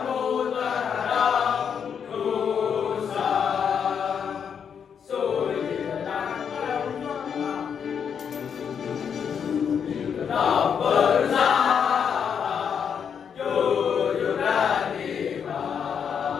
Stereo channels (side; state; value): right; quieter; 7.4 dB